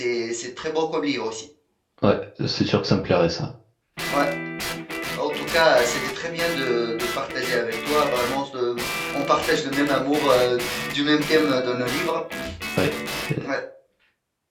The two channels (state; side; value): identical; both; correlation 1.00